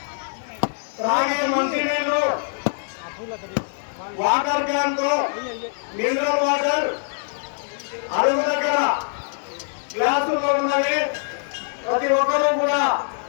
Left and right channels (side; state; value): right; silent; 58 dB below the other